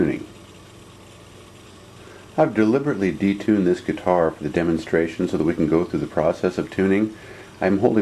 I've deliberately detuned this guitar for the demonstration so that we can go through the process of tuning. I'm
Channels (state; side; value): identical; both; correlation 1.00